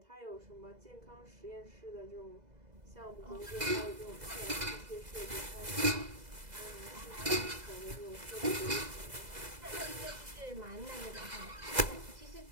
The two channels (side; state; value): left; late; 2.0 ms